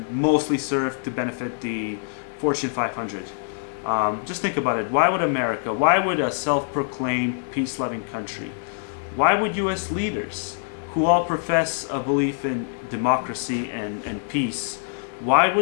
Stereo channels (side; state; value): right; silent; digital silence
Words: mostly served to benefit the Fortune 500. Just think about it. Why would America, why would a self-proclaimed peace-loving country, why would U.S. leaders, who all profess a belief in democracy and peace, why